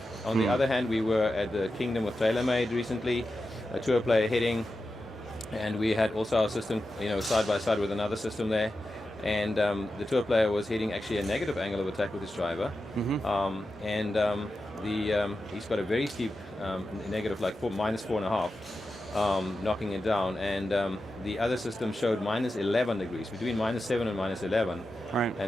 On the other hand, we were at the Kingdom of TaylorMade recently, a tour player hitting, and we had also our system, side by side with another system there. And the tour player was hitting actually a negative angle of attack with his driver, he's got a very steep negative, like -4.5, knocking it down. And the other system showed -11 degrees, between -7 and -11. Right.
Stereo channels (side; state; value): both; normal; correlation 0.91